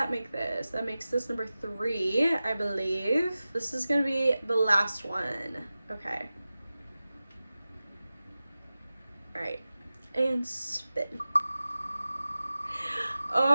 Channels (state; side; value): inverted; both; correlation -0.95